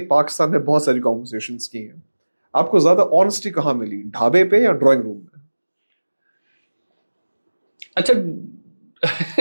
پاکستان میں بہت ساری کانورسیشنز کی ہیں, آپ کو زیادہ آنیسٹی کہاں ملی, ڈھابے پہ یا ڈرائنگ روم میں؟ اچھا,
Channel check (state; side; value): inverted; both; correlation -1.00